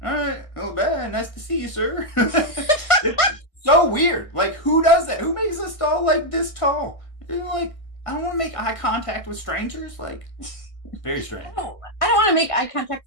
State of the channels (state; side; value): late; right; 1.6 ms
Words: all right, well, bad. Nice to see you, sir. It's so weird. Like, who does that? Who makes a stall like this tall? You're like, I don't want to make eye contact with strangers. Like, very strange. I don't want to make eye